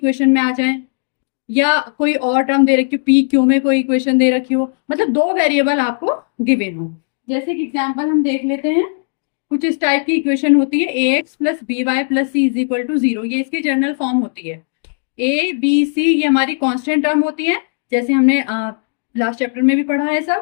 में आ जाएं, या कोई और टर्म दे रखी हो, पी क्यू में कोई इक्वेशन दे रखी हो, मतलब दो वेरिएबल आपको गिवन हो। जैसे कि एग्जांपल हम देख लेते हैं, कुछ इस टाइप की इक्वेशन होती है, ax+by+c इज इक्वल टू 0। ये इसकी जनरल फॉर्म होती है। a b c ये हमारी कांस्टेंट टर्म होती है, जैसे हमने लास्ट चैप्टर में भी पढ़ा है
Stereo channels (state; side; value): silent; right; digital silence